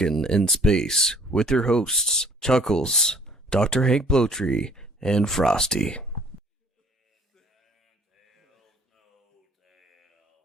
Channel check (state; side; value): normal; both; correlation 0.56